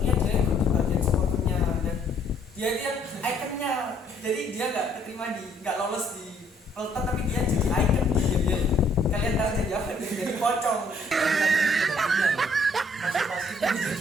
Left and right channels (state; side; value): normal; both; correlation 0.65